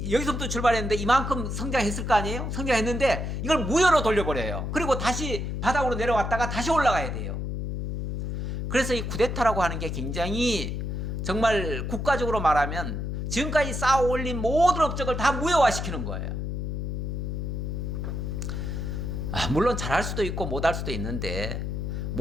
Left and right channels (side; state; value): left; noise; hum, 3 dB below the sound